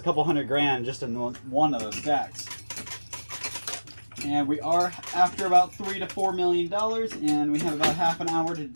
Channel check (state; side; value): inverted; both; correlation -1.00